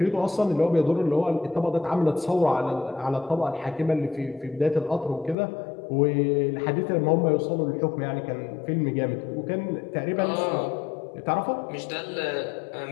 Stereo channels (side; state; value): right; drops out; at 5.4 s